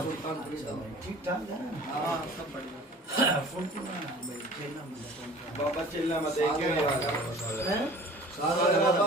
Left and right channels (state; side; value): normal; both; correlation 0.45